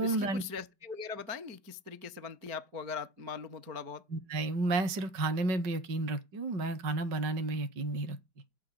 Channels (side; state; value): left; late; 5.3 ms